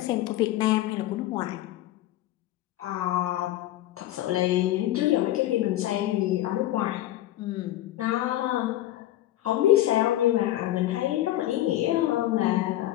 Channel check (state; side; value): quieter; right; 14.6 dB